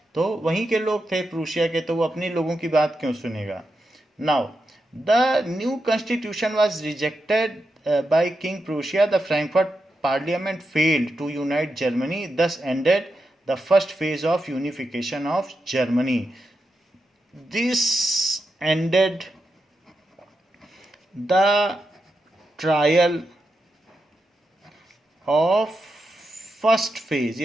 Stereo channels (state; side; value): normal; both; correlation 0.87